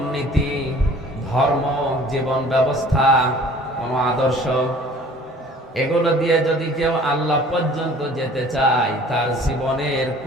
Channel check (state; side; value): normal; both; correlation 0.50